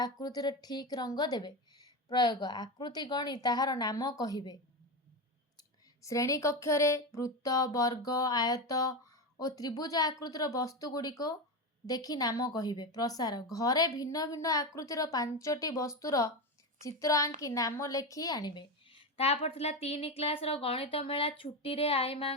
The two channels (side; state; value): both; normal; correlation 0.16